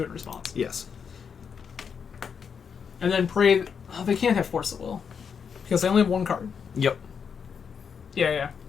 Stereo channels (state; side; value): quieter; right; 6.7 dB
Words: it in response. Yes. And then pray. Oh, they can't have Force at Will because they only have 1 card. Yep. Yeah.